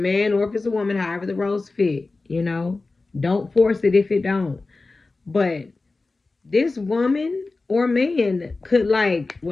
or if it's a woman, however the roles fit, don't force it if it don't. But this woman or man could, like,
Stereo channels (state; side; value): quieter; right; 3.6 dB